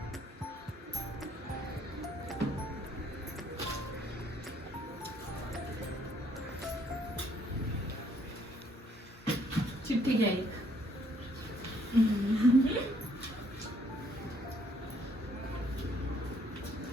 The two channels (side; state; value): both; normal; correlation 0.66